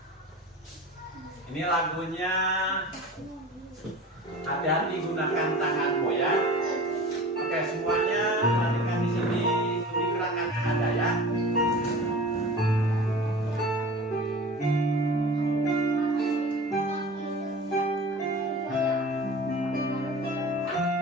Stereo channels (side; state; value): both; normal; correlation 0.38